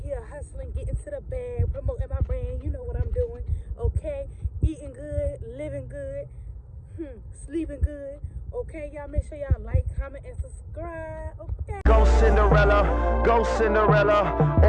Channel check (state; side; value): identical; both; correlation 1.00